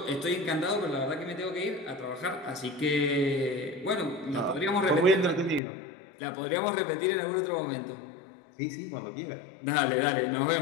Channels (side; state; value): right; drops out; at 5.6 s